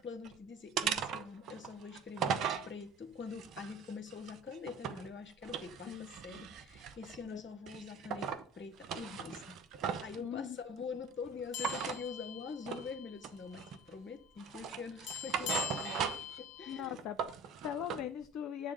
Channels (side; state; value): both; normal; correlation 0.43